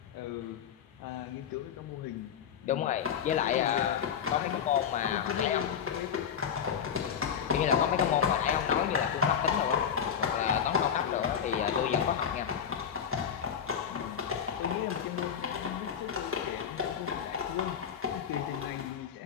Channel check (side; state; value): right; quieter; 8.0 dB